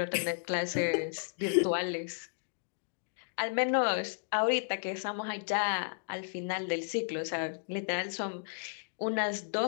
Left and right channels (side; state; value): right; silent; digital silence